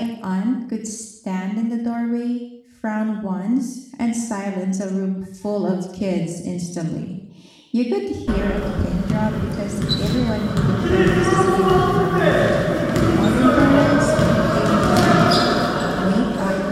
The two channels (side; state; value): both; identical; correlation 1.00